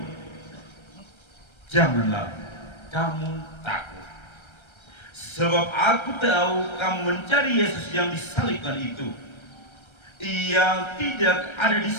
"Janganlah kamu takut. Sebab aku tahu kamu mencari Yesus yang disalibkan itu. Ia tidak ada di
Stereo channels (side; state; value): right; late; 1.3 ms